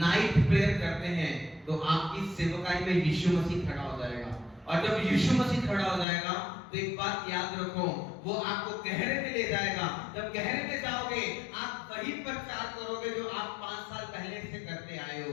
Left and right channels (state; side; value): drops out; right; at 6.1 s